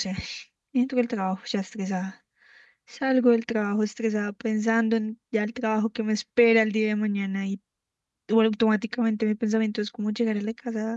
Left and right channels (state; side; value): identical; both; correlation 1.00